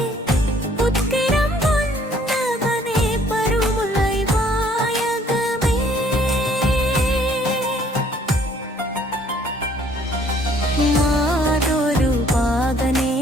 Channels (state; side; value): normal; both; correlation 0.60